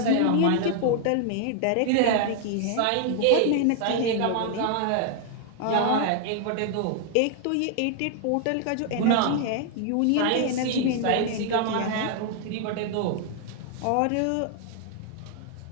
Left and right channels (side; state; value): both; different; correlation 0.00